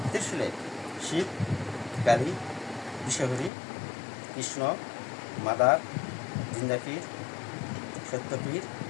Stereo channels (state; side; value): drops out; right; at 3.5 s